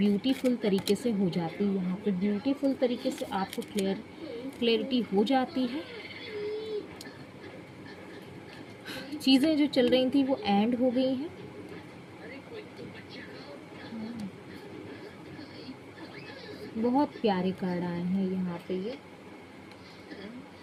तरीके से हो जाती है। यहाँ पे ब्यूटीफुल तरीके से आपको क्लैरिटी हो जाती है। चीज़ें जो चल रही थी वो एंड हो गई हैं। बहुत प्यारे कार्ड आए हैं यहाँ पे। ये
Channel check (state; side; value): identical; both; correlation 1.00